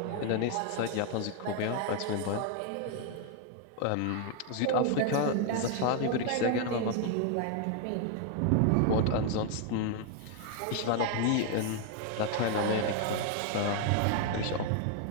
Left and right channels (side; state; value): both; different; correlation 0.00